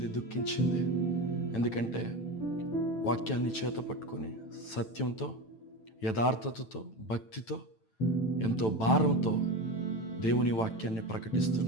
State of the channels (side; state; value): right; late; 9.0 ms